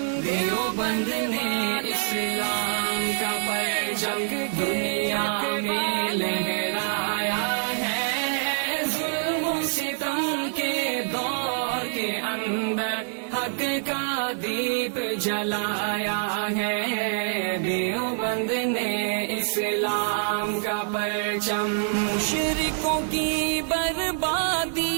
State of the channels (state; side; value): silent; left; 61 dB below the other